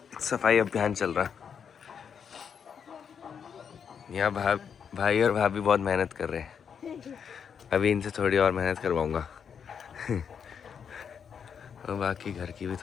सफाई अभियान चल रहा है। यहाँ भाई और भाभी बहुत मेहनत कर रहे हैं। अभी इनसे थोड़ी और मेहनत करवाऊँगा। और बाकी घर की भी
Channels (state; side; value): quieter; right; 7.2 dB